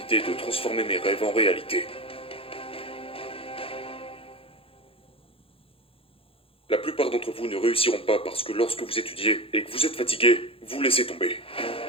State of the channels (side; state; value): right; late; 0.27 ms